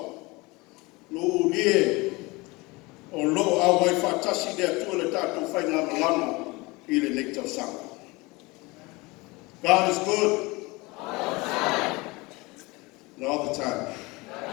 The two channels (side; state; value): right; quieter; 24.0 dB